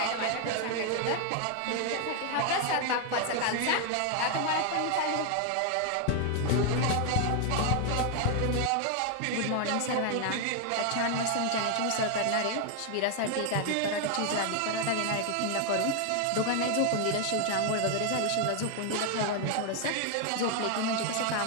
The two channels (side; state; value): both; different; correlation 0.00